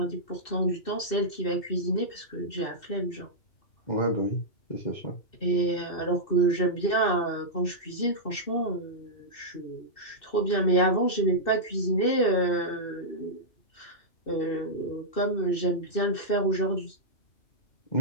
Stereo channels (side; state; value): right; late; 2.7 ms